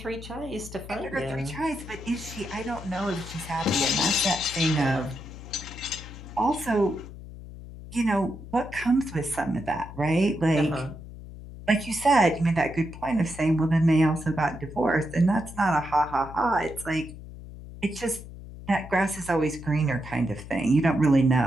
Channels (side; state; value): left; noise; hum, 14 dB below the sound